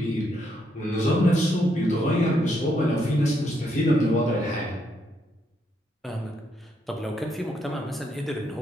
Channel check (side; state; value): both; normal; correlation 0.76